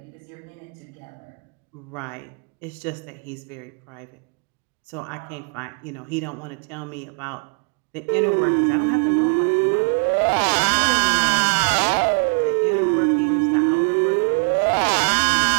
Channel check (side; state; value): left; quieter; 37.3 dB